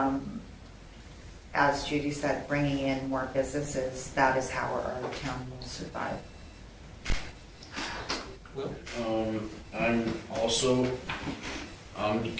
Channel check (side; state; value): both; identical; correlation 1.00